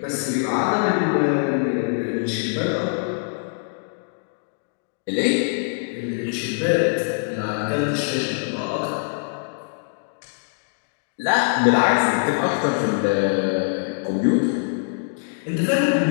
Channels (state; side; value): silent; right; digital silence